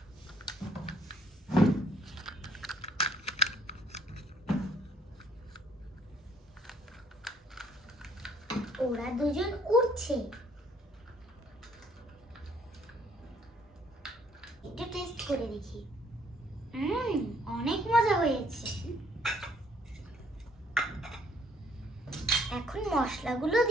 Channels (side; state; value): both; normal; correlation 0.64